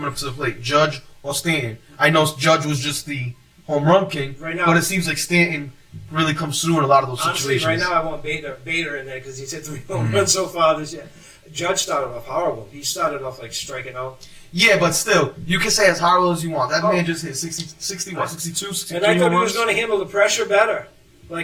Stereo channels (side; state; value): both; identical; correlation 1.00